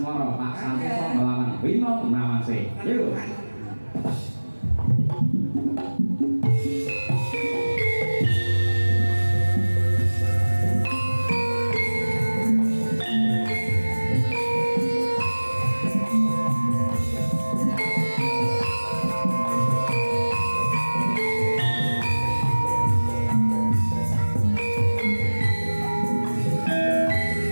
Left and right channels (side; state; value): both; inverted; correlation -1.00